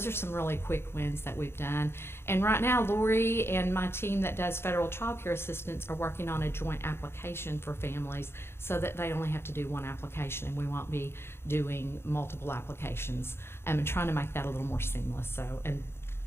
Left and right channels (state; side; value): late; right; 0.12 ms